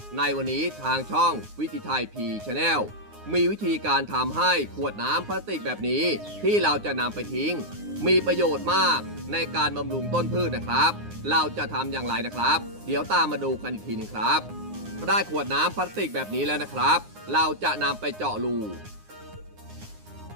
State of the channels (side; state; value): left; late; 9.7 ms